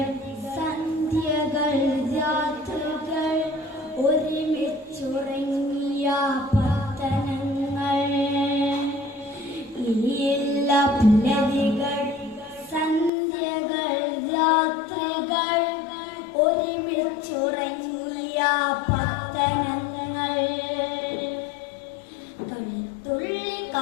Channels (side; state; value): right; drops out; at 13.1 s